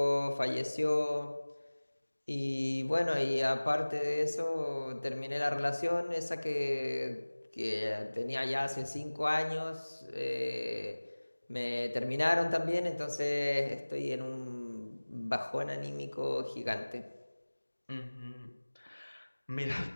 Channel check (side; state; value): both; inverted; correlation -1.00